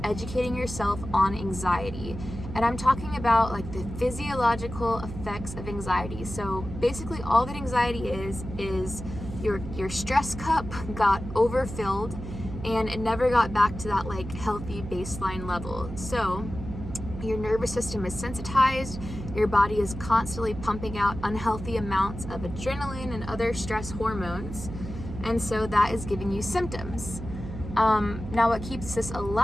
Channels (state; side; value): noise; right; hum, 9 dB below the sound